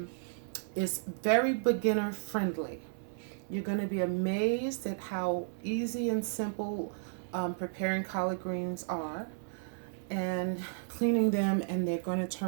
it's very beginner friendly. You're going to be amazed at how easy and simple preparing collard greens are and cleaning them, and they're going to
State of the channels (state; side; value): silent; left; 56 dB below the other